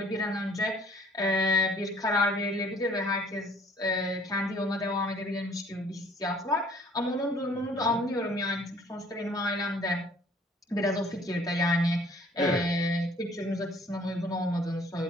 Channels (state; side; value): normal; both; correlation 0.57